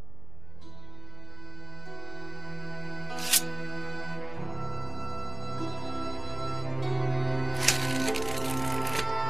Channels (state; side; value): noise; left; hum, 21 dB below the sound